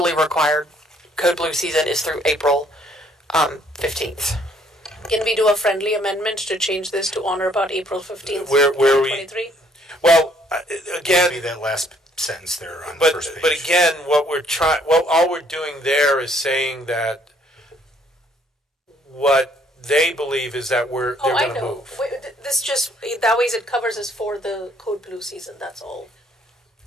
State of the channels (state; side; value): normal; both; correlation 0.64